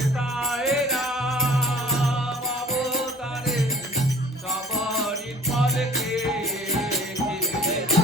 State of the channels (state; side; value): normal; both; correlation 0.49